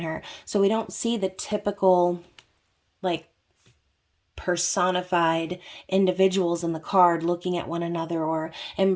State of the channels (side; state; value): both; identical; correlation 1.00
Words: her. So we don't see the typical, like, personified individuals in the card looking at one another or